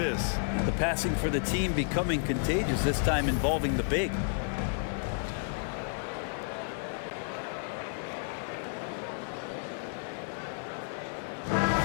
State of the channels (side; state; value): right; silent; digital silence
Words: The passing for the team becoming contagious, this time involving the big.